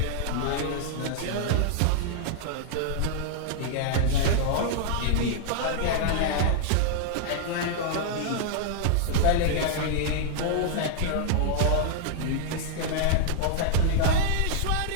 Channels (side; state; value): both; different; correlation -0.01